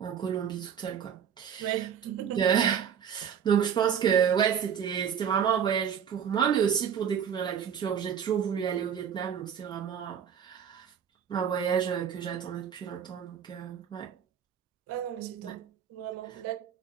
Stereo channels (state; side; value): quieter; left; 8.1 dB